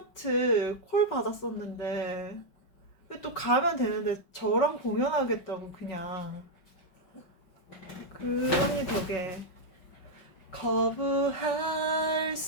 콜 받았었는데 또 가면 되는데 저랑 공연하겠다고 그냥. 그 언니 덕에 거부할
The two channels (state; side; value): late; right; 5.5 ms